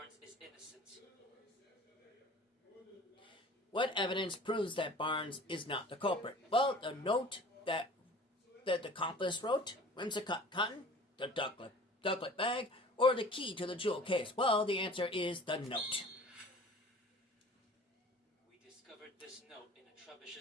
is innocent. What evidence proves that Barnes is not the culprit? Well, the note that the accomplice wrote, whimsicott cotton, the ducklet bag, or the key to the jewel case. Well, the answer is the note. We discovered this note in a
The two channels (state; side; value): normal; both; correlation 0.45